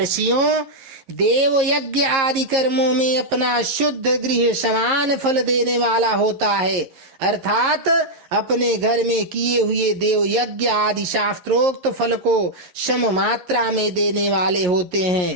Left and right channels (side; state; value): left; late; 11 ms